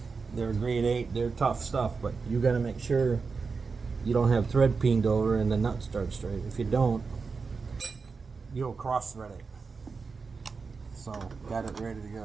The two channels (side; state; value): left; quieter; 4.8 dB